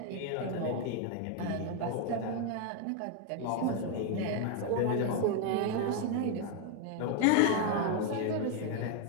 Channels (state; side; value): different; both; correlation 0.01